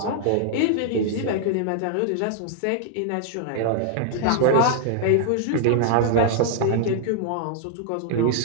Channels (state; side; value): different; both; correlation -0.01